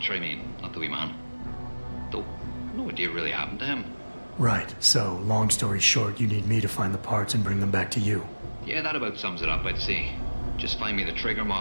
I mean, not the wee man. Though, no idea what really happened to him. Right, so, long story short, you need me to find the parts and bring them back to you. Yeah, that about sums it up, I'd say. Just find me the trigger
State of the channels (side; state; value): both; inverted; correlation -1.00